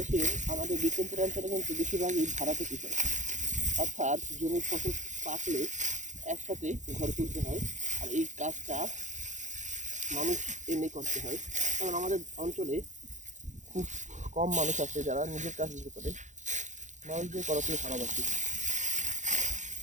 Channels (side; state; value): left; late; 0.35 ms